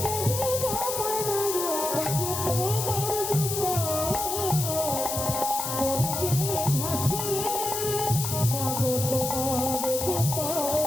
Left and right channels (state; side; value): noise; left; hiss, 3 dB below the sound